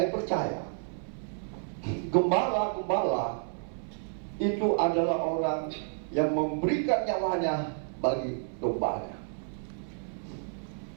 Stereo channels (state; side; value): silent; left; 57 dB below the other